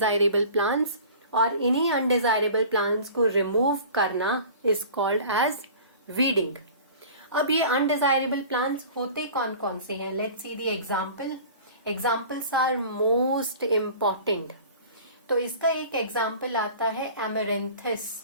प्लांट्स और इन्हीं अनडिजायरेबल प्लांट्स को रिमूव करना इज कॉल्ड एज वीडिंग. अब ये अनडिजायरेबल प्लांट्स होते कौन कौन से हैं? Let's see the example. Examples are most important. तो इसका एक एग्जाम्पल आता है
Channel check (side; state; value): both; inverted; correlation -0.42